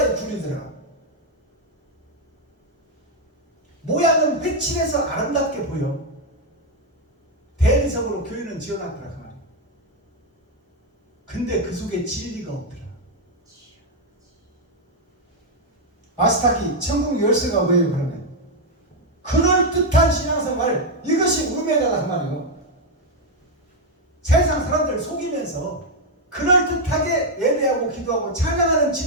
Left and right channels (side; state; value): both; normal; correlation 0.01